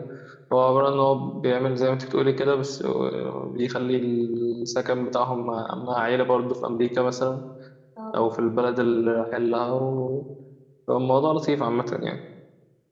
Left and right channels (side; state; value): both; identical; correlation 1.00